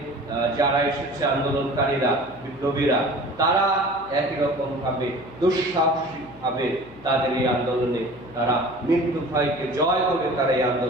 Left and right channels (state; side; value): noise; left; hum, 21 dB below the sound